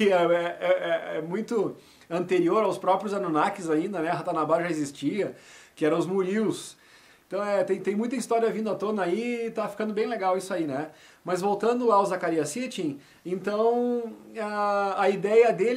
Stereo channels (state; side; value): identical; both; correlation 1.00